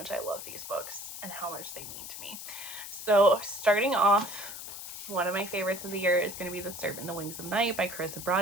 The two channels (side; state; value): left; noise; hiss, 9 dB below the sound